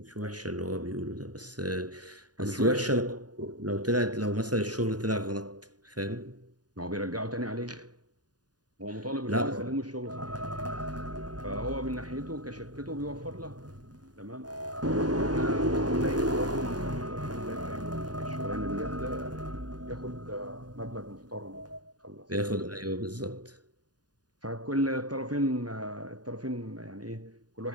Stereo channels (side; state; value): left; late; 0.69 ms